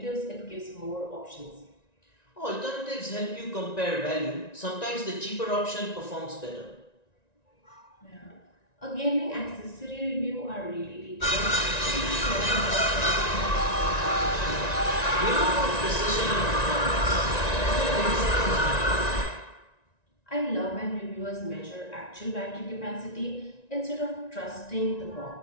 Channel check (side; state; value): right; late; 1.9 ms